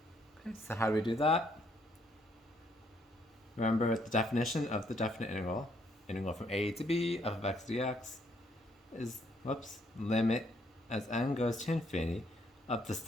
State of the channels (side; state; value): both; normal; correlation 0.70